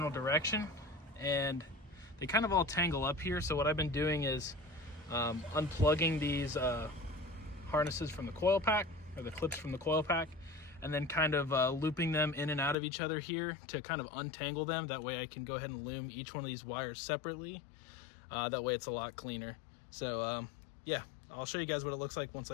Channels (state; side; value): drops out; right; at 12.8 s